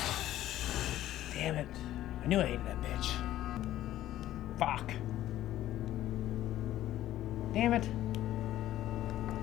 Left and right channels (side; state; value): right; quieter; 13.6 dB